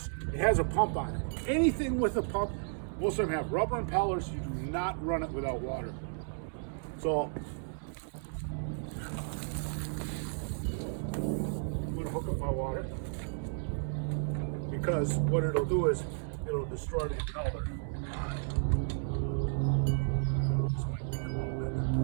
it has a pump on it. Anything with a pump, most of them have rubber impellers. You do not run it without water. So I'm going to hook up my water because what it'll do is it'll destroy the impeller.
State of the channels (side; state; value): left; silent; digital silence